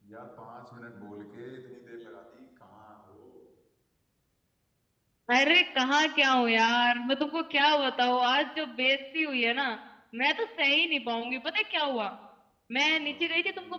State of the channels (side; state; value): both; identical; correlation 1.00